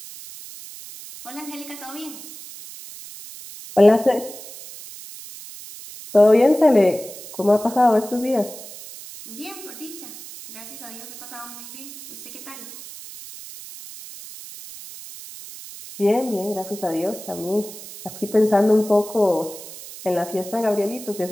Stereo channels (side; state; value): right; noise; hiss, 14 dB below the sound